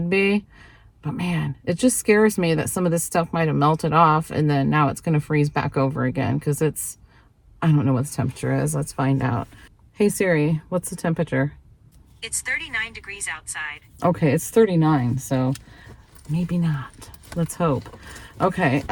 be, but man, it just scares me that some of this stuff might have melted off and then now it's going to freeze back over again because I don't know what the temperature is. Let's find out. Hey Siri, what's the temperature? It's 39 degrees outside. Okay, it's 39, so maybe not. Let's hope. Okay,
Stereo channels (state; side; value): identical; both; correlation 1.00